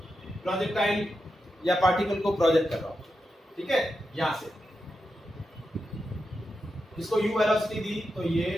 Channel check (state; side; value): normal; both; correlation 0.88